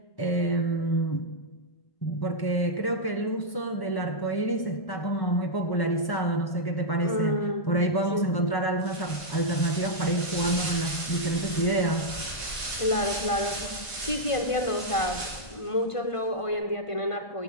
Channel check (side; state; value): right; late; 1.5 ms